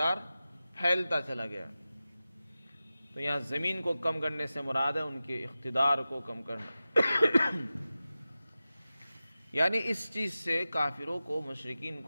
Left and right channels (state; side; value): inverted; both; correlation -0.95